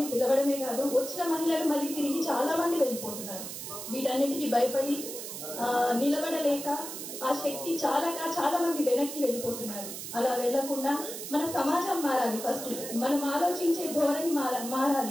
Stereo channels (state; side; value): noise; right; hiss, 8 dB below the sound